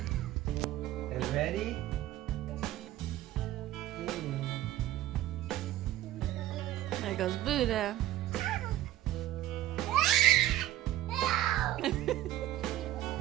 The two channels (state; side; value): quieter; left; 13.9 dB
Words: You ready? There goes Buddha.